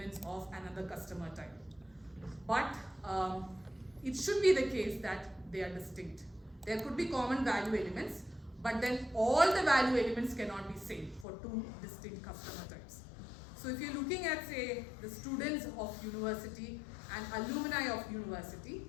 of another customer type. But it should be the case that they are distinct. There could be common value elements, but then all the value elements cannot be same for two distinct customer types. So if you're looking at, say, the students of university and alumni of university,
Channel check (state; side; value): drops out; right; at 11.2 s